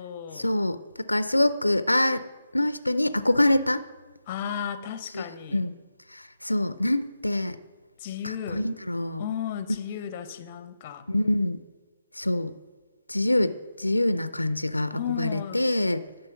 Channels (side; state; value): both; inverted; correlation -0.93